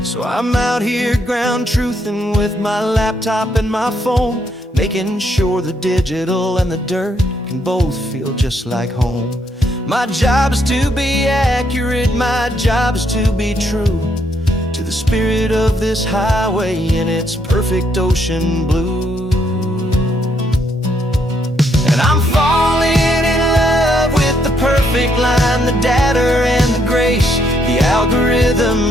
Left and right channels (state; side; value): normal; both; correlation 0.73